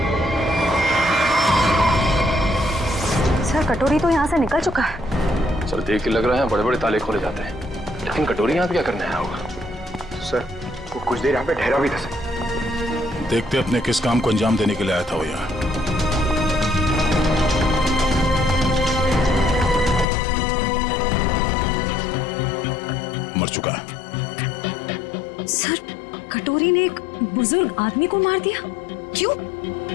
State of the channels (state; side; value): drops out; right; at 20.1 s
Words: सर कटोरी तो यहाँ से निकल चुका है। सर देख के लग रहा है बड़े बड़े ताले खोले जाते हैं, लेकिन कटोरी यहाँ पे क्या करने आया होगा? सर वो कुछ देर यहाँ पे ठहरा भी था सर। देखते अपने किस काम को अंजाम देने के लिए आया था वो यहाँ। मर चुका है। सर कटोरी ने एक बुजुर्ग आदमी को मार दिया, क्यों?